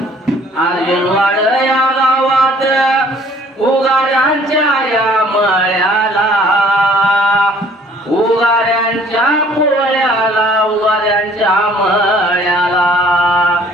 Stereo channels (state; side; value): normal; both; correlation 0.57